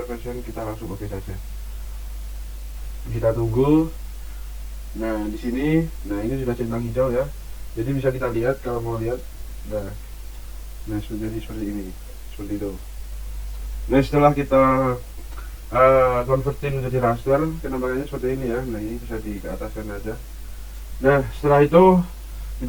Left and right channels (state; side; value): identical; both; correlation 1.00